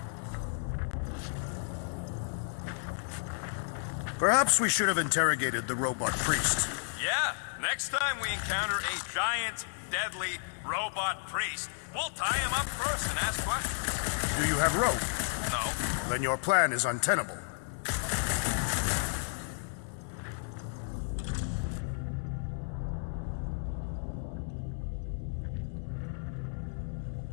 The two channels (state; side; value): silent; right; 56 dB below the other